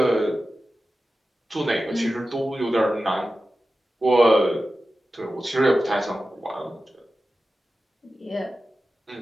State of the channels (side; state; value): both; normal; correlation 0.94